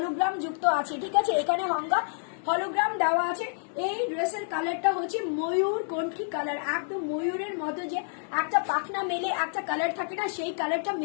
যুক্ত আছে। ঠিক আছে, এখানে গঙ্গা হলোগ্রাম দেওয়া আছে। এই ড্রেসের কালারটা হচ্ছে ময়ূর কণ্ঠী কালার, একদম ময়ূরের মতো যে একটা পাখনা মেলে একটা কালার থাকে না, সেই কালারটা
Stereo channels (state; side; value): silent; right; digital silence